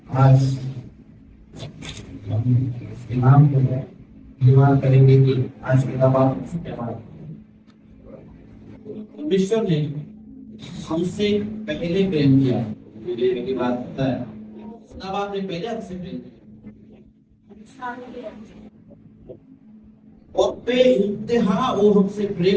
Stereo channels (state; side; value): identical; both; correlation 1.00